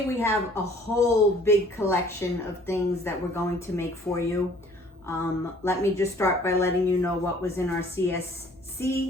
we have a whole big collection of things that we're going to make for you. Let me just start by letting you know what was in our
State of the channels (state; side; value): normal; both; correlation 0.55